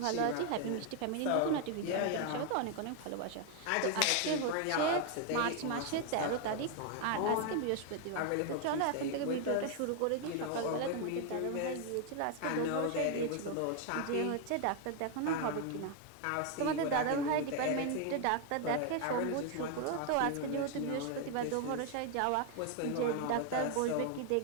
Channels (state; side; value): different; both; correlation 0.01